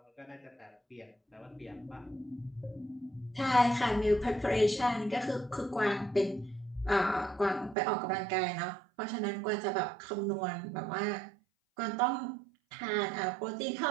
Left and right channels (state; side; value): drops out; left; at 7.8 s